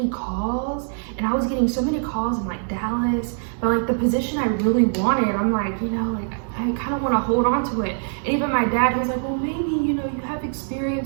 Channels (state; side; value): silent; left; 63 dB below the other